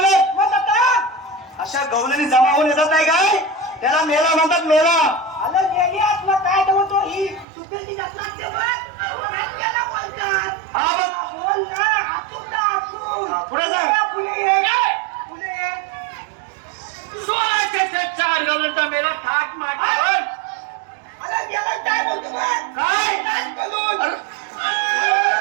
अशा गवलेनी जमा होऊन येतात नाही काय त्याला मेला म्हणतात. मेला आलं गेली आत्मा काय बोलतो ही चुकेल जात लागते बोलतात हा बघ. बोल ना हातून पुढे सांग. पुढे 16 शतकाच्या आठ गबळ्यांचा मेला थाट माटावर आलं गेलं काय बोलतो काय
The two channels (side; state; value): left; drops out; at 7.5 s